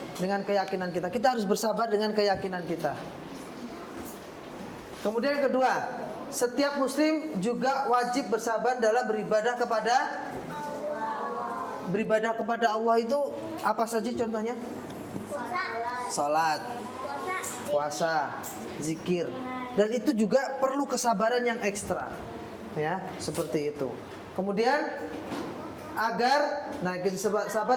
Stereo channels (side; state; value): both; identical; correlation 1.00